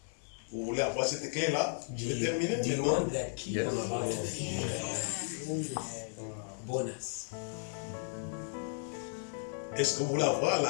Vous voulez avoir cette clé-là? Je vais terminer Do you maintenant. want that key? I'm about to finish. Bonus. Est-ce que vous voulez avoir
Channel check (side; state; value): right; silent; digital silence